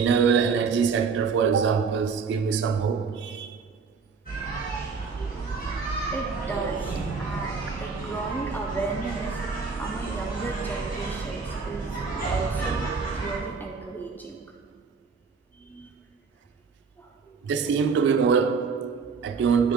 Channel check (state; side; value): quieter; left; 5.3 dB